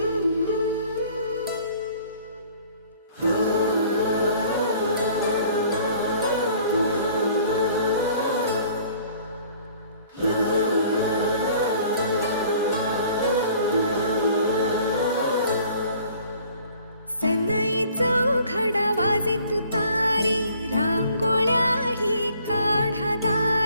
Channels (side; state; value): both; inverted; correlation -0.55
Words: घडा वाजे तुतारी, रांगोळ्याही काढा